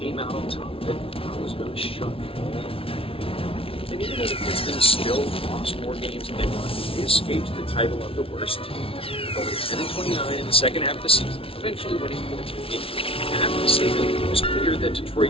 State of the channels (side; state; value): right; late; 0.26 ms